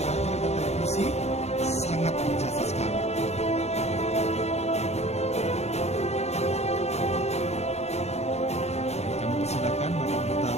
radio dan televisi sangat berjasa sekali. Baik, kami persilakan Bapak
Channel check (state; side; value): late; right; 0.31 ms